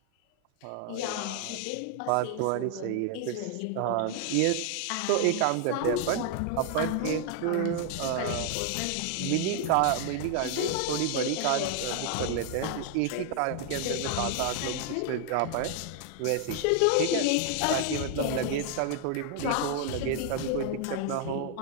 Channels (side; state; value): both; different; correlation 0.00